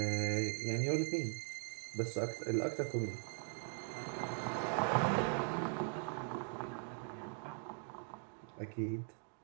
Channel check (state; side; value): silent; left; 51 dB below the other